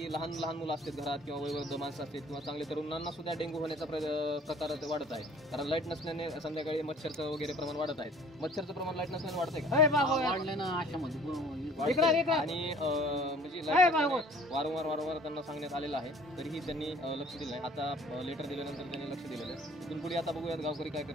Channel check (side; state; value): both; normal; correlation 0.52